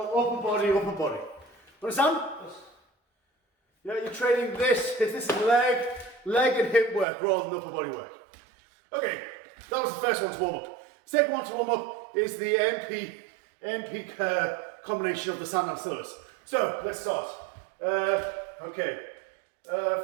upper body. Understand? Yeah, you're training this. This is leg and hip work rather than upper body work. Okay, that was the first one to warm up. Second one to warm up is the MP combination of the Sandan syllabus. So let's start.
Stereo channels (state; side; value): drops out; left; at 7.1 s